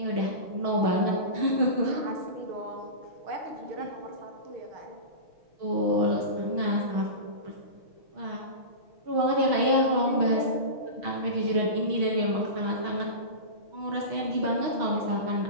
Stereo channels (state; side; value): late; left; 6.3 ms